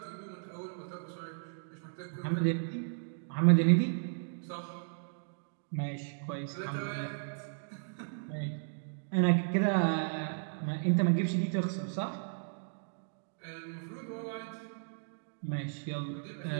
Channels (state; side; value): silent; left; digital silence